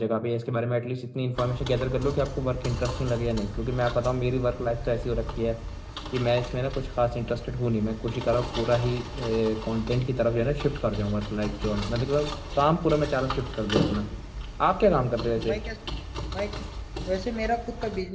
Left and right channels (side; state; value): both; identical; correlation 1.00